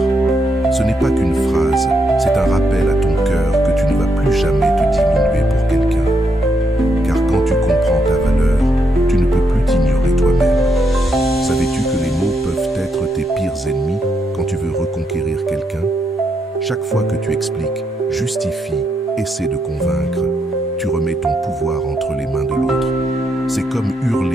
». Ce n'est pas qu'une phrase, c'est un rappel à ton cœur que tu ne vas plus jamais te diminuer pour quelqu'un. Car quand tu comprends ta valeur, tu ne peux plus t'ignorer toi-même. Savais-tu que les mots peuvent être tes pires ennemis quand tu veux reconquérir quelqu'un? Chaque fois que tu expliques, justifies, essaies de convaincre, tu remets ton pouvoir entre les mains de l'autre. C'est comme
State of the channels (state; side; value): normal; both; correlation 0.79